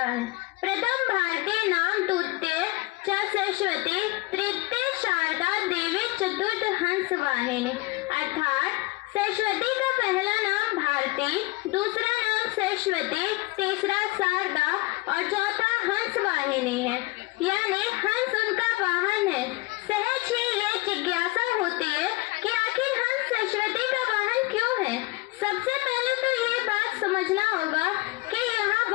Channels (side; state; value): right; quieter; 22.4 dB